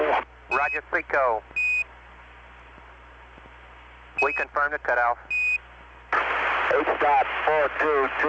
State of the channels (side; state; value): both; identical; correlation 1.00